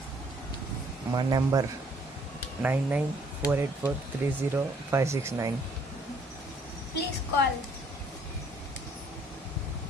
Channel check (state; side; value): normal; both; correlation 0.63